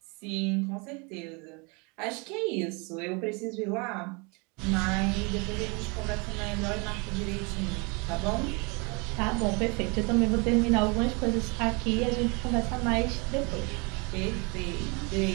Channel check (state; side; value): quieter; left; 30.5 dB